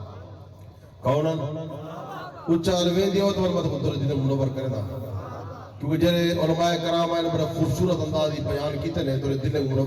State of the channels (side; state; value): both; identical; correlation 1.00